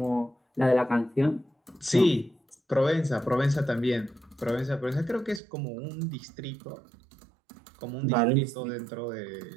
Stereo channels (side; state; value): left; drops out; at 5.4 s